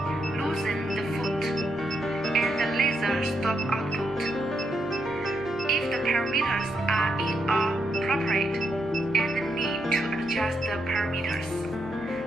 Loosen the foot, and the laser stop output. If the parameters are inappropriate and need to adjust the parameters,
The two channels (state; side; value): noise; right; hum, 26 dB below the sound